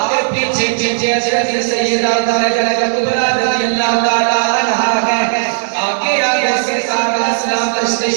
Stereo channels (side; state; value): left; silent; digital silence